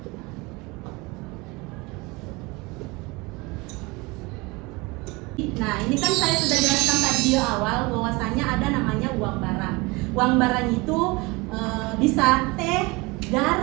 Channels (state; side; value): quieter; left; 24.8 dB